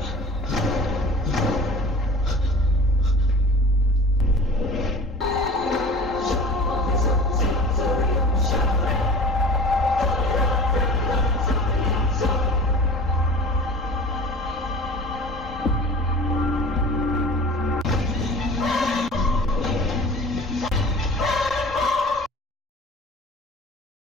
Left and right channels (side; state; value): both; normal; correlation 0.40